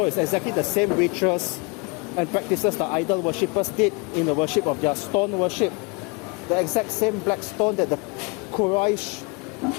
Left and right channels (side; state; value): right; quieter; 29.9 dB